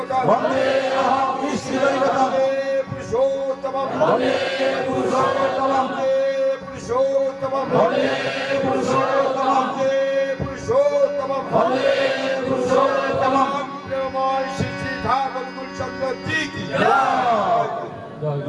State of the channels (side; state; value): both; identical; correlation 1.00